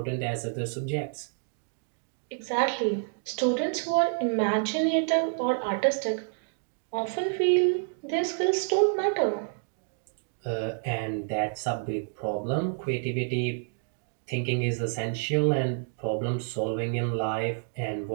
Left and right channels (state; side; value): silent; left; digital silence